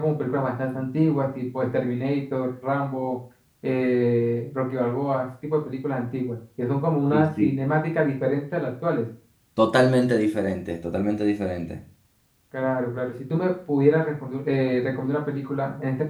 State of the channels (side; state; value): both; identical; correlation 1.00